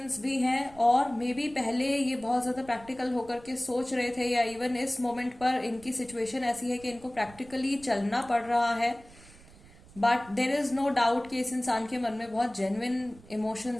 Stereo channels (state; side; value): noise; right; rumble, 22 dB below the sound